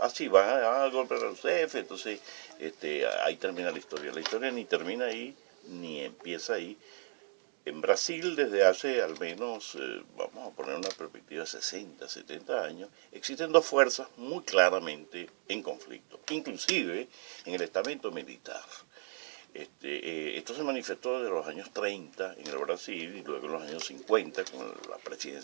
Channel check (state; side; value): silent; left; 54 dB below the other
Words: Así va al golpe de Rousseff, entonces ahí termina la historia. La historia ni termina ahí, ni empieza ahí. En Brasil, desde hace al menos, vamos a poner una perspectiva de 60, 70 años, existen dos fuerzas muy claramente en conflicto, inclusive en el estamento militar. Esto se manifestó desde los años 30 en el Brasil y luego en los años 50 con la